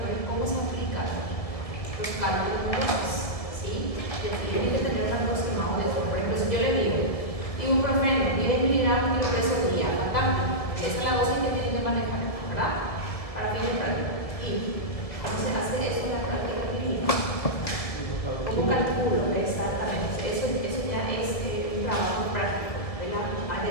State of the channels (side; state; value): right; late; 1.8 ms